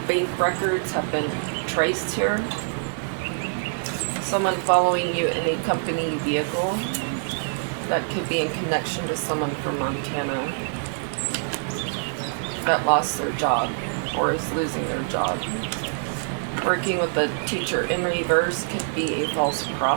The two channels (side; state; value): left; silent; digital silence